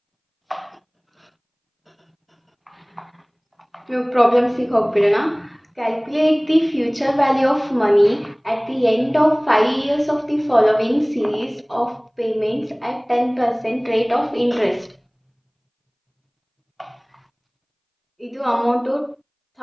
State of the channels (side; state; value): both; identical; correlation 1.00